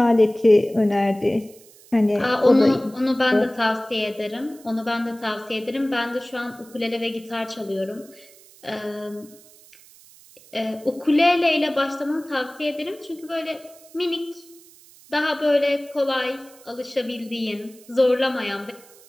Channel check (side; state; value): right; noise; hiss, 24 dB below the sound